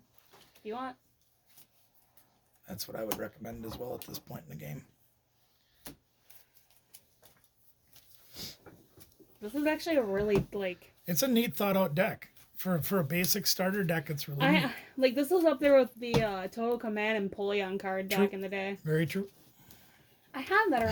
You want? That's what I would recommend as well at this point in the game. This is actually a really, like... It's a neat thought out deck. For a basic starter deck, it's really neat. This was up there with the Total Command and Polion card True. back in the day. Very true. I have that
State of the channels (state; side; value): identical; both; correlation 1.00